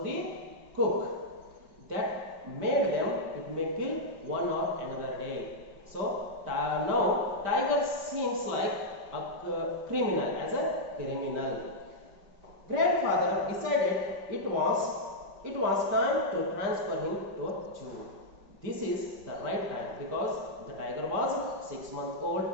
the cook. That made them, it may kill one or another day. So now tiger seems like a criminal, as a criminal. Grandfather decided it was time to transfer him to a zoo. This is the right time because the tiger was 6 months old,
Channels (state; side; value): late; left; 5.0 ms